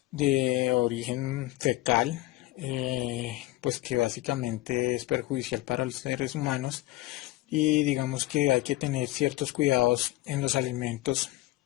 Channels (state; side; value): quieter; right; 18.3 dB